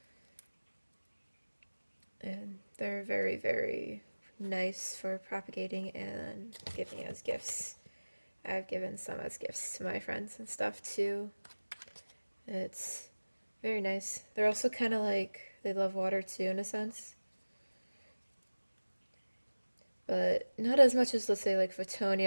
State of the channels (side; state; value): both; inverted; correlation -1.00